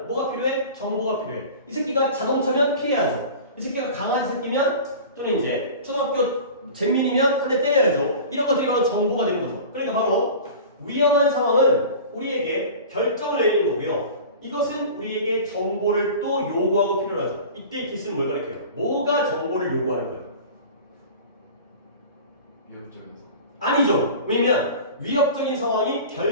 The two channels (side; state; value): both; inverted; correlation -0.37